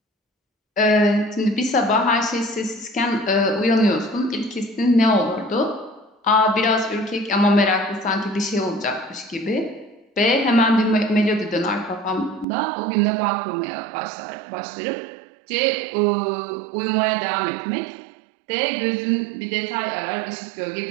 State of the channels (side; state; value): left; drops out; at 12.5 s